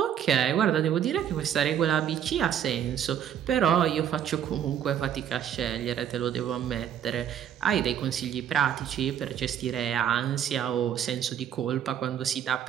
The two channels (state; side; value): quieter; left; 9.4 dB